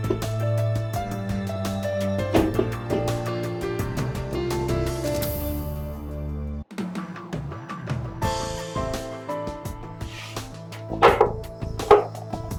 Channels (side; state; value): both; identical; correlation 1.00